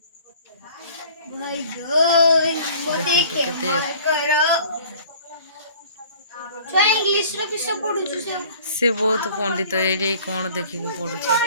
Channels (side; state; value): both; inverted; correlation -0.50